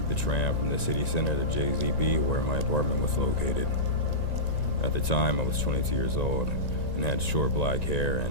the tram from the city center to JZP where my apartment was located. At the time I was 22 years old and had short black hair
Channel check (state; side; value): late; right; 1.9 ms